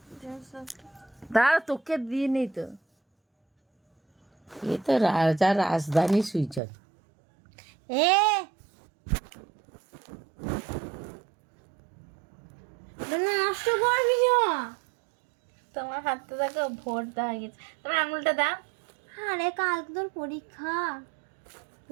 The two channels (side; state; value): left; drops out; at 6.6 s